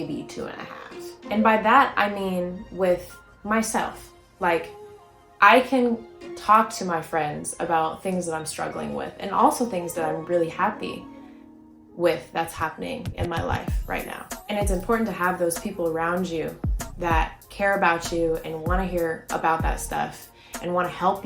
2.5. And by that, I mean with myself. Like, I can talk to my friends about things that I'm struggling with, and also things that I'm really happy with that's happening in my life right now. And it's important to have those people around you that care about you and want to hear about that stuff and want to help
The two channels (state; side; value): identical; both; correlation 1.00